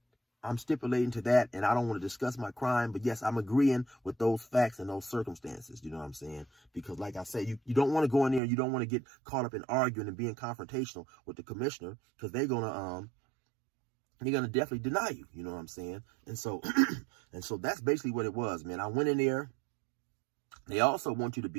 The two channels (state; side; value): drops out; left; at 8.4 s